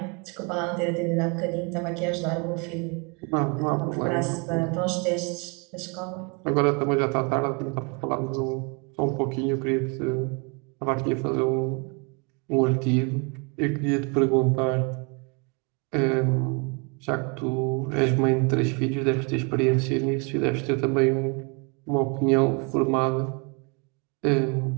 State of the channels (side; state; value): left; quieter; 33.1 dB